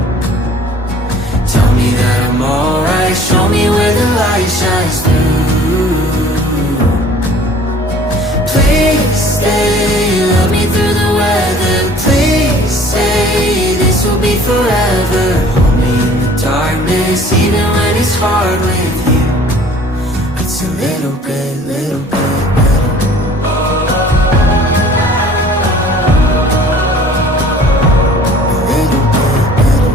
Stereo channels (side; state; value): both; normal; correlation 0.51